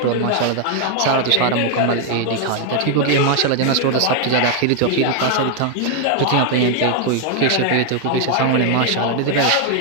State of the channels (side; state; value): both; different; correlation 0.00